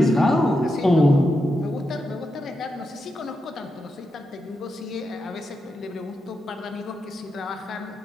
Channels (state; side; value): normal; both; correlation 0.87